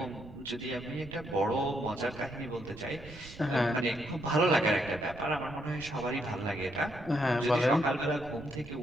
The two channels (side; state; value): right; noise; rumble, 16 dB below the sound